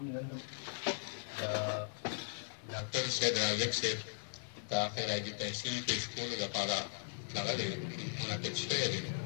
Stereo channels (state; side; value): silent; right; digital silence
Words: نن د ډاکټر صاحب راجک صاحب د خیراجي تحصیل پیش کولو لپاره دغه دی منعقد شوی دی.